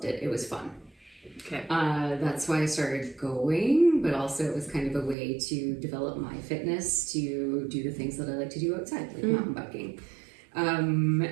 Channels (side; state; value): left; drops out; at 5.2 s